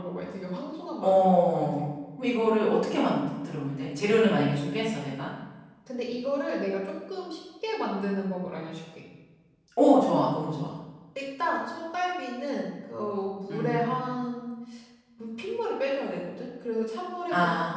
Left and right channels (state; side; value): identical; both; correlation 1.00